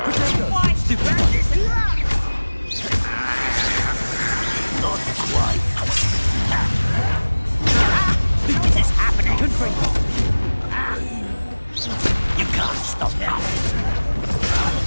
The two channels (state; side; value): inverted; both; correlation -1.00